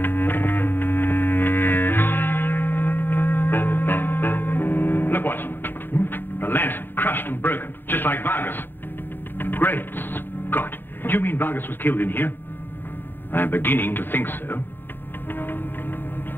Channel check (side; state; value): right; late; 0.098 ms